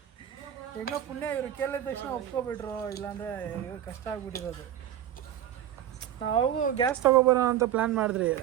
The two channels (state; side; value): quieter; left; 11.2 dB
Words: ಹೆಂಗೋ ಪುಣ್ಯ ಇವರು ಕೇಳಿದ ತಕ್ಷಣ ಒಪ್ಕೊಬಿಟ್ರು, ಇಲ್ಲಾಂದರೆ ಕಷ್ಟ ಆಗ್ಬಿಟ್ಟಿರೋದು. ನಾವು ಗ್ಯಾಸ್ ತೊಗೊಬರೋಣ ಅಂತ ಪ್ಲ್ಯಾನ್ ಮಾಡಿದ್ರಿ.